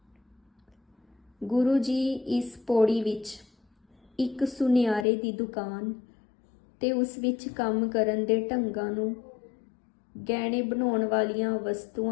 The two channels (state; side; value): drops out; right; at 5.1 s